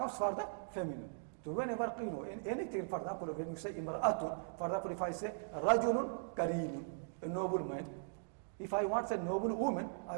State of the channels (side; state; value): left; silent; digital silence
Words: for the feminine. So whenever, in anything, for example, when you say imra'atun, for example, if I say rajulun kareemun, a noble man. If I want to say noble woman, I